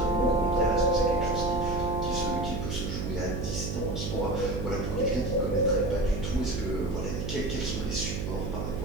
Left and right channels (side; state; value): right; noise; hum, 3 dB below the sound